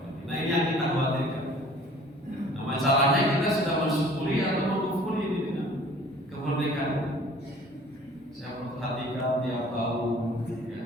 Nah, ini yang kita khawatirkan. Nah, masalahnya kita sudah bersyukuri atau mengkufuri ini dengan kemerdekaan. Saya perhatikan tiap tahun ya,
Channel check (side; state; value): both; normal; correlation 0.51